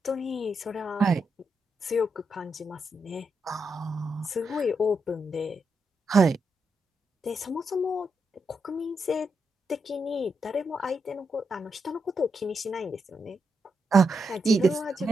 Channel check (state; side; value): normal; both; correlation 0.83